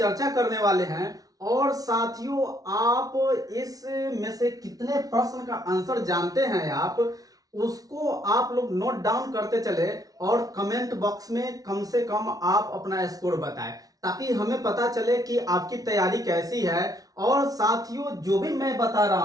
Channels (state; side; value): late; left; 0.18 ms